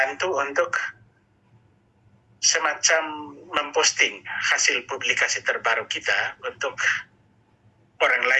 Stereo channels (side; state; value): both; identical; correlation 1.00